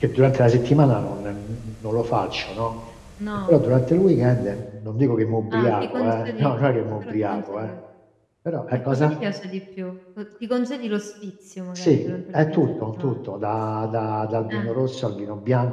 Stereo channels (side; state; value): both; identical; correlation 1.00